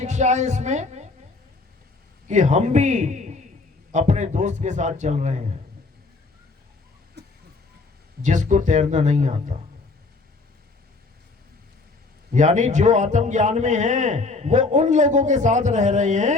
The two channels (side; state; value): right; quieter; 3.7 dB